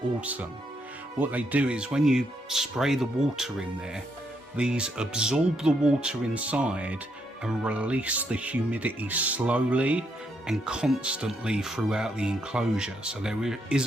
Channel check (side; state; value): both; normal; correlation 0.76